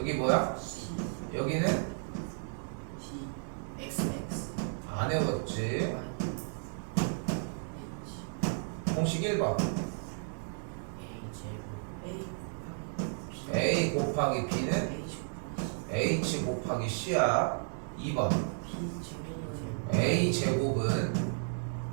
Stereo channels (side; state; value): left; silent; digital silence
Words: 뭐야? 여기는 안 외웠지. 공식 1번 A 곱하기 B는 H 곱하기 C야. 2번 A 제곱은